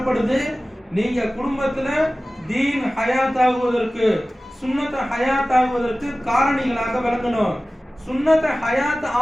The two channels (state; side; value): normal; both; correlation 0.97